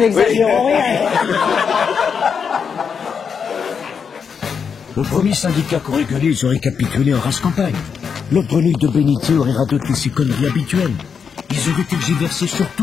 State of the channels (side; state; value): right; quieter; 6.5 dB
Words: rien. Au premier syndicat qu'aurait gueulé, ils auraient capitulé en race campagne. L'autre grenouille de Bénitier aurait radoté ses conneries habituelles. Ils auraient tergiversé sur